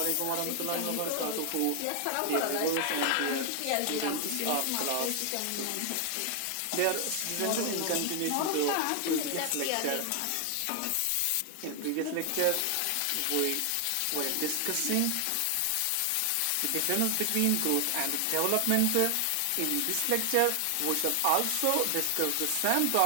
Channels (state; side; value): different; both; correlation 0.00